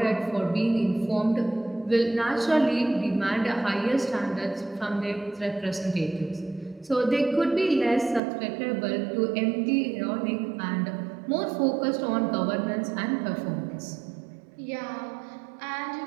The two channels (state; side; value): drops out; left; at 8.2 s